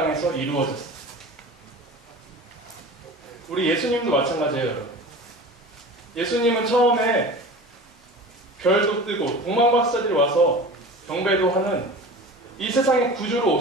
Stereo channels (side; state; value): both; normal; correlation 0.36